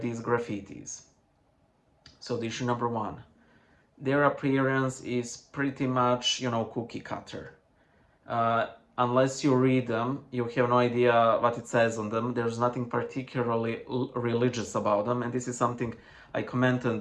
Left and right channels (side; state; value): both; identical; correlation 1.00